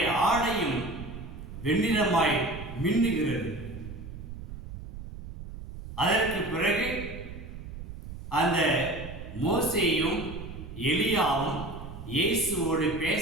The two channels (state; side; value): noise; right; rumble, 11 dB below the sound